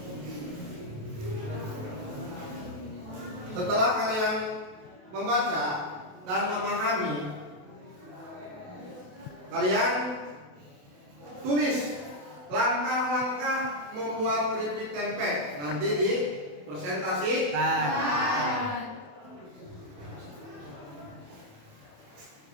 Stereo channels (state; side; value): late; left; 28 ms